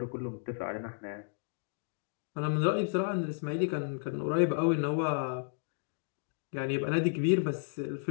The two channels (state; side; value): silent; right; digital silence